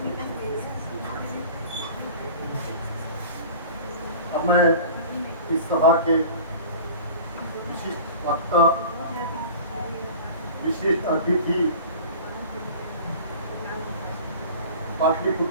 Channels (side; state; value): both; inverted; correlation -0.40